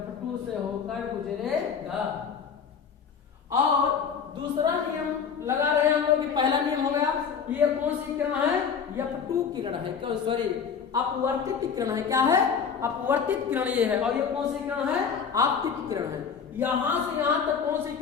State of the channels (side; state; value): right; quieter; 6.6 dB